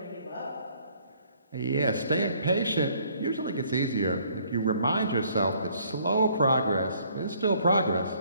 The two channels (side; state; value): both; inverted; correlation -0.62